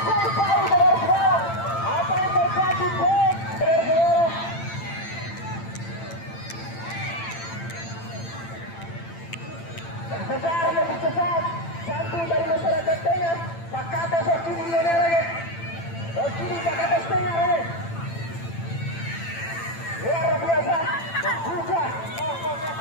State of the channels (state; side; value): late; right; 8.9 ms